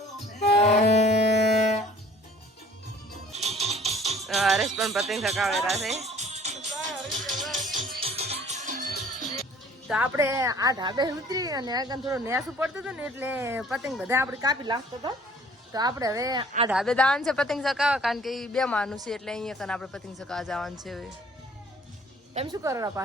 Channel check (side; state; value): both; normal; correlation 0.53